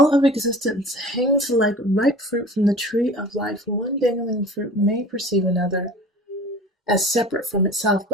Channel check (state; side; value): normal; both; correlation 0.41